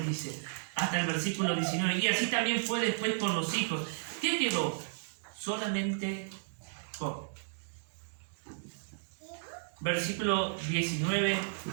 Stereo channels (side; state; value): left; silent; digital silence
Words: dice, hasta el versículo 19. Y así también fue después con los hijos. ¿Qué quedó? Solamente Job. Versículo 19